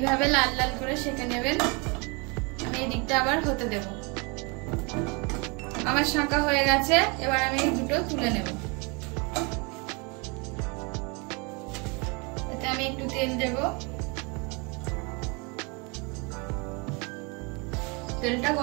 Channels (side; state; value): left; quieter; 30.6 dB